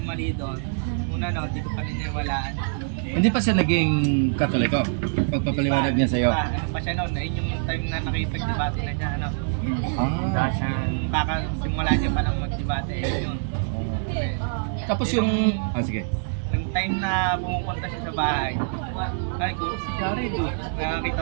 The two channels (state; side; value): silent; left; digital silence